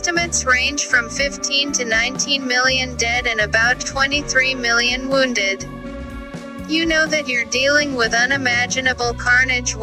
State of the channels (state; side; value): identical; both; correlation 1.00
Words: range from 15 to 19 million dead and about 23 million wounded. You know that you're dealing with unimaginable carnage